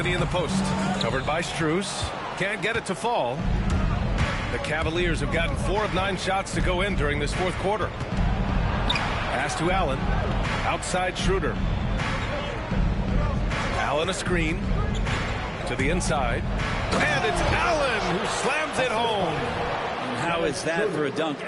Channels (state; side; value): identical; both; correlation 1.00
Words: in the post. Covered by Strus. Can't get it to fall. The Cavaliers have gotten 4 of 9 shots to go in during this fourth quarter. Pass to Allen. Outside Schroeder. Allen a screen. To the inside. And it's Allen who slams it home. And how is that for a dunk?